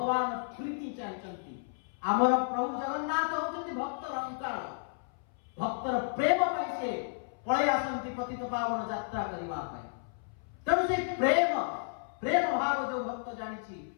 प्रीति चाहचंती आमर प्रभु जगन्नाथ होचंती भक्तर अंकार भक्तर प्रेम पई से पळे आसंती पतित पावन यात्रा करिवा पई तेणु से प्रेम प्रेम भाव जो भक्त जानिछि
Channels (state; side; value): silent; right; 56 dB below the other